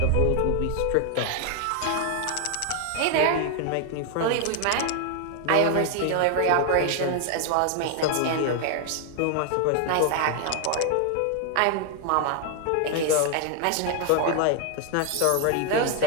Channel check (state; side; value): different; both; correlation 0.00